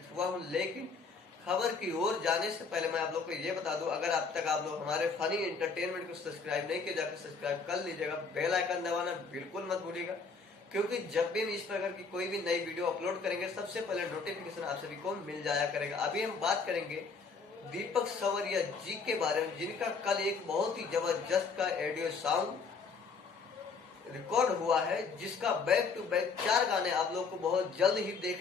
हुआ हूँ। लेकिन खबर की ओर जाने से पहले मैं आप लोग को ये बता दूं, अगर अब तक आप लोग हमारे फनी एंटरटेनमेंट को सब्सक्राइब नहीं किया, जाकर सब्सक्राइब कर लीजिएगा। बेल आइकन दबाना बिल्कुल मत भूलिएगा, क्योंकि जब भी हम इस प्रकार की कोई भी नई वीडियो अपलोड करेंगे, सबसे पहले नोटिफिकेशन आप सभी को मिल जाया करेगा। अभी हम बात करेंगे दीपक सवरिया जी के बारे में, जिनका कल एक बहुत ही जबरदस्त का ऑडियो सॉन्ग रिकॉर्ड हुआ है, जिसका बैक टू बैक 4 गाने आप लोग को बहुत जल्द ही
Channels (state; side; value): quieter; right; 4.9 dB